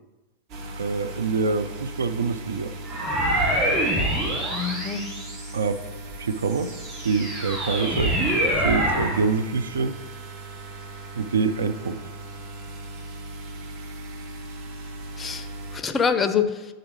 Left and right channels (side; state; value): both; normal; correlation -0.15